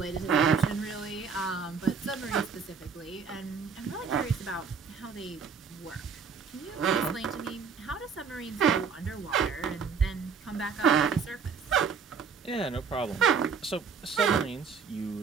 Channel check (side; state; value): left; quieter; 5.9 dB